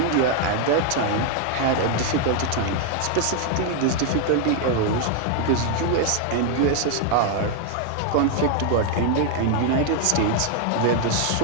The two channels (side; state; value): both; different; correlation 0.01